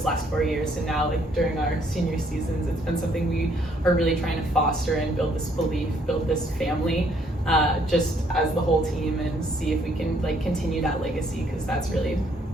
last 4 years. And now like during our senior seasons, it's been something we are really trying to foster and build this belief, build this family, just as the whole team, and see if we can like continue that legacy, because that's really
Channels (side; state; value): both; normal; correlation 0.67